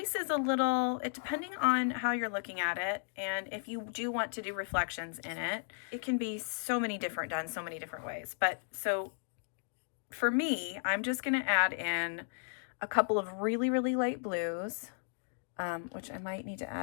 is a little, depending on how you're looking at it, and if you do want to do reflections in it, it can be done so many different ways. But so for me, I'm just going to add in a couple of really, really light blues, which I might need to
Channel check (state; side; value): silent; right; digital silence